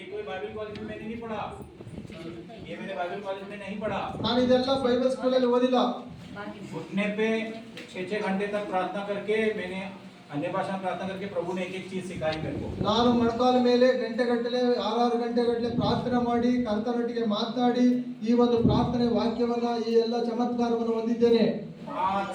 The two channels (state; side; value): identical; both; correlation 1.00